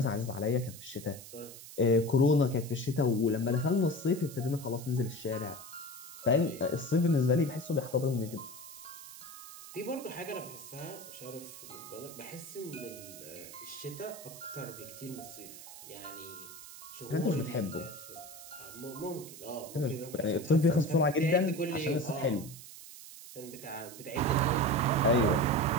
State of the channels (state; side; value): noise; right; hiss, 15 dB below the sound